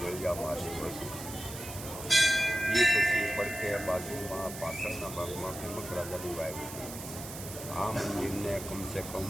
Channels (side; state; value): right; noise; hiss, 11 dB below the sound